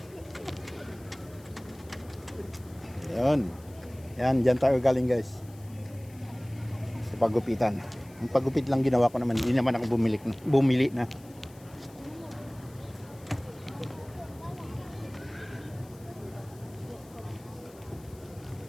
Yan, dyan tayo galing guys. Sa pagupitan. Ang pagupit lang ginawa ko naman, hindi naman ako bumili na.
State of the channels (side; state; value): left; noise; hiss, 25 dB below the sound